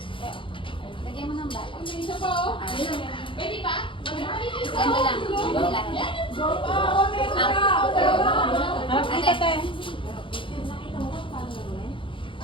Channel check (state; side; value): late; right; 0.25 ms